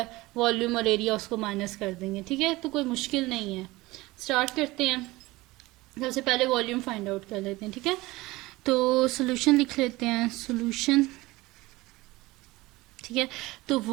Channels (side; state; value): left; quieter; 20.2 dB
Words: वॉल्यूम और एरिया उसको माइनस कर देंगे, ठीक है। तो कोई मुश्किल नहीं है। स्टार्ट करते हैं। सबसे पहले वॉल्यूम फाइंड आउट कर लेते हैं, ठीक है। तो सोल्यूशन लिख लेते हैं, सोल्यूशन, ठीक है। तो